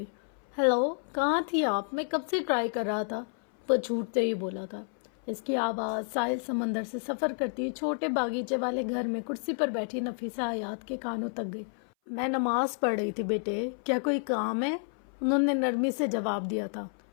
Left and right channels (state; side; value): silent; right; 58 dB below the other